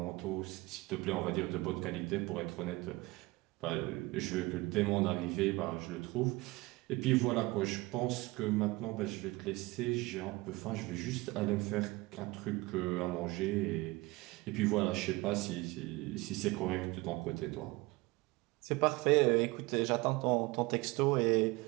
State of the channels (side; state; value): left; quieter; 22.2 dB